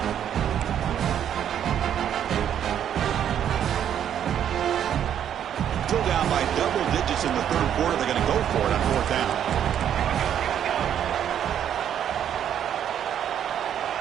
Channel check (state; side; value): quieter; left; 9.6 dB